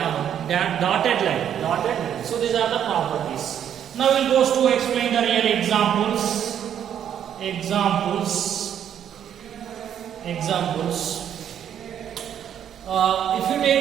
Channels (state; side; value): quieter; left; 9.5 dB